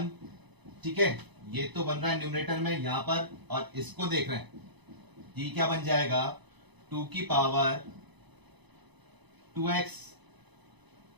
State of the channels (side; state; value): left; late; 1.0 ms